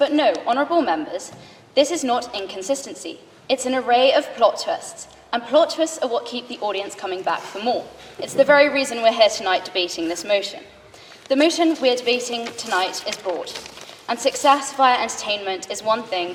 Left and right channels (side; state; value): both; identical; correlation 1.00